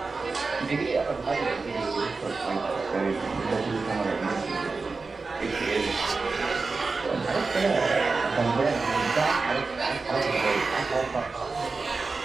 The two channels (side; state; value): left; quieter; 4.1 dB